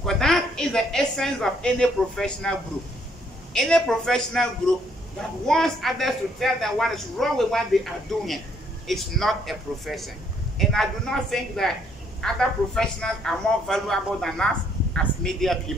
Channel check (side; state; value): both; normal; correlation 0.68